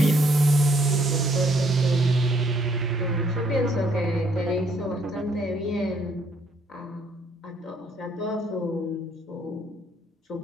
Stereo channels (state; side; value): normal; both; correlation 0.67